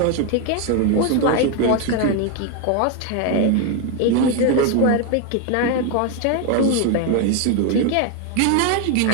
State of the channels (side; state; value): both; different; correlation 0.01